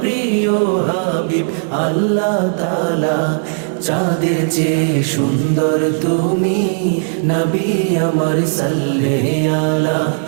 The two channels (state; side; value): silent; left; 66 dB below the other